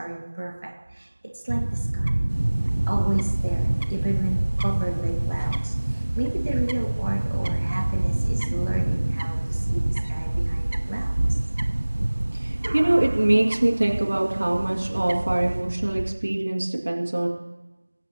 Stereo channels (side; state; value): both; inverted; correlation -1.00